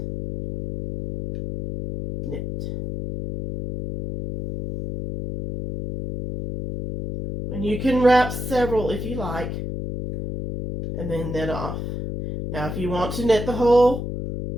knit. And you can wrap several if you like, and then knit off. Now if you want to knit the whole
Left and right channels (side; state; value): left; noise; hum, 5 dB below the sound